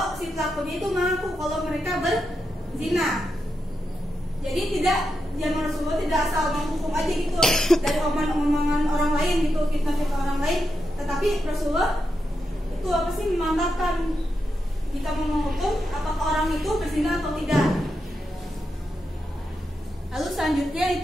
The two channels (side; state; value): both; normal; correlation 0.86